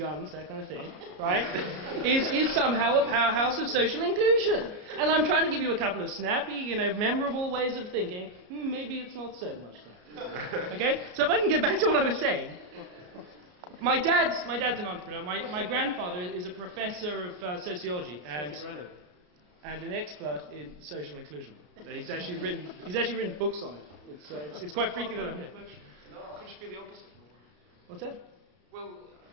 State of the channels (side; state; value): left; late; 33 ms